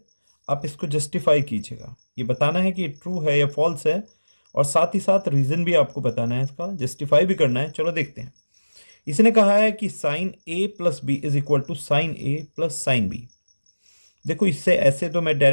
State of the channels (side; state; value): both; inverted; correlation -1.00